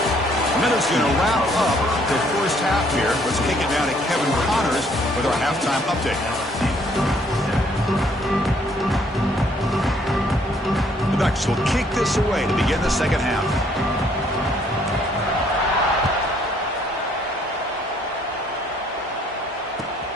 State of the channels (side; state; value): both; normal; correlation 0.65